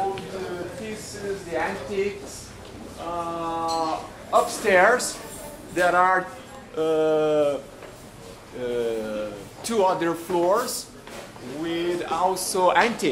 pieces, the antiques. Upstairs there are two other floors with also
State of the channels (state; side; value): identical; both; correlation 1.00